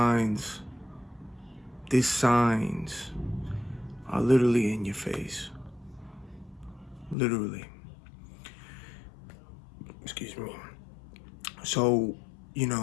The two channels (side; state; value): right; drops out; at 7.2 s